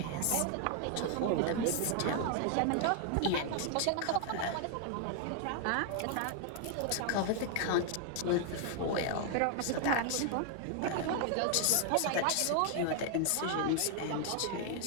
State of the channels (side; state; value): both; different; correlation 0.00